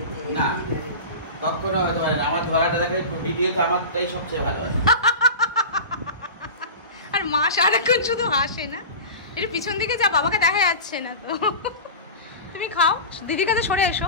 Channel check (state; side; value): inverted; both; correlation -0.30